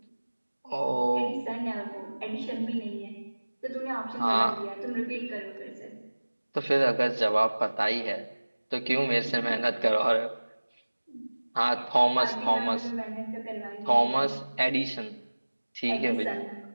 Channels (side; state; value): both; inverted; correlation -1.00